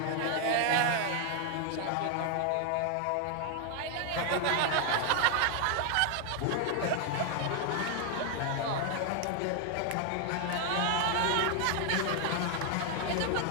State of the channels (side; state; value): both; different; correlation 0.00